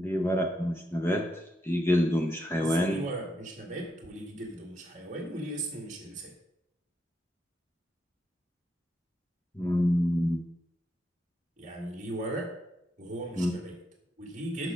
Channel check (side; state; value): both; normal; correlation 0.81